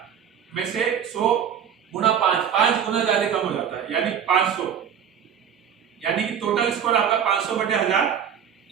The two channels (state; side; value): quieter; left; 8.4 dB